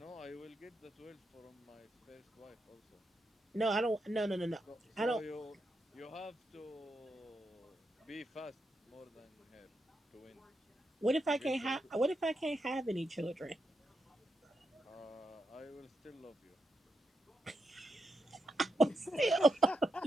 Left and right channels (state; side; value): normal; both; correlation 0.84